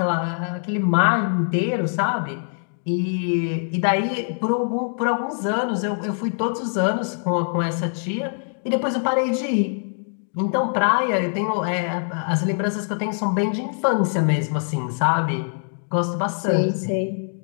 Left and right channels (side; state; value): right; silent; digital silence